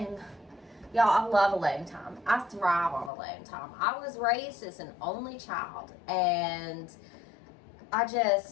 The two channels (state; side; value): drops out; right; at 3.1 s